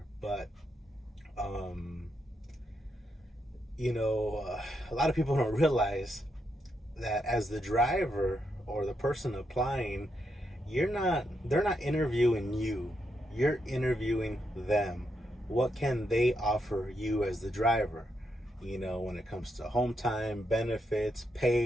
But a lot of people don't realize that as the driver or the person applying, they're not interviewing you, you're interviewing them. What can they offer you as the driver, when it comes to home time, benefits,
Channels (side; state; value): both; normal; correlation 0.81